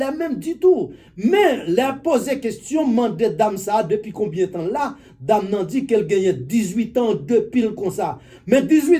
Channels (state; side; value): identical; both; correlation 1.00